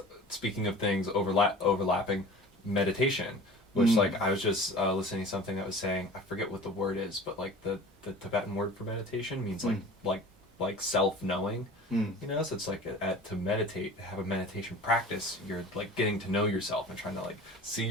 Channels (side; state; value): both; normal; correlation 0.40